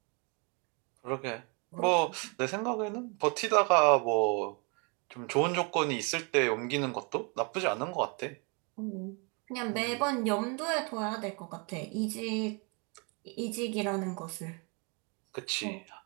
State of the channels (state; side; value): quieter; left; 33.0 dB